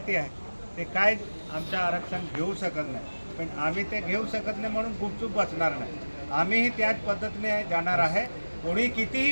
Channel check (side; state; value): both; inverted; correlation -1.00